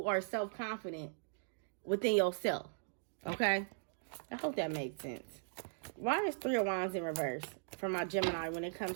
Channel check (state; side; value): silent; left; digital silence